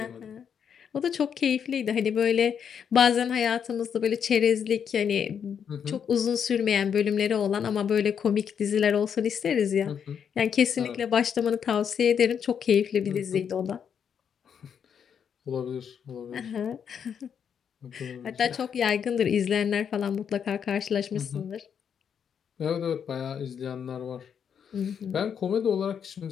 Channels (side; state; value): right; quieter; 7.7 dB